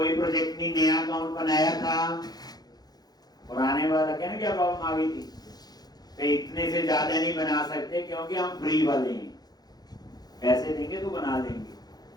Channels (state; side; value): late; right; 0.19 ms